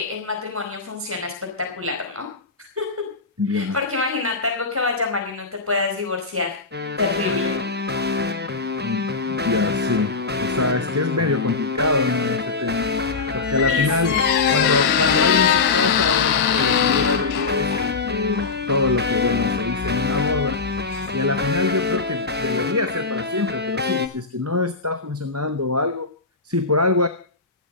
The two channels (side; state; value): right; quieter; 4.2 dB